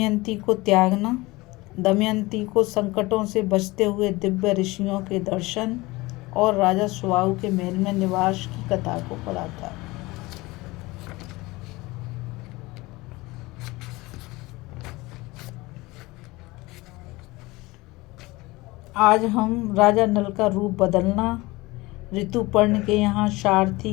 को त्यागना, दमयंती को संकटों से बचते हुए दिव्य ऋषियों के दर्शन और राजा सुबाहु के महल में निवास की कथा को पढ़ा था। आज हम राजा नल का रूप बदलना, ऋतुपर्ण के यहाँ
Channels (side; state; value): right; quieter; 21.5 dB